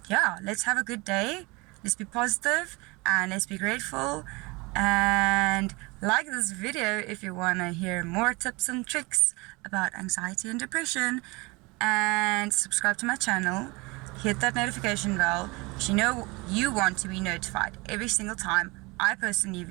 yeah, let's have a good day, let's be positive, and let's be grateful. And like this video if you want to hear more tips and tricks about anxiety and depression, and subscribe to my channel, hit that notification bell, because you want to be notified every single time I post a new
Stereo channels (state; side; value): quieter; left; 25.4 dB